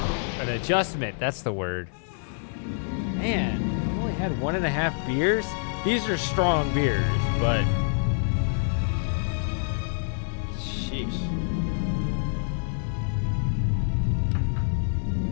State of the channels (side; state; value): right; silent; 60 dB below the other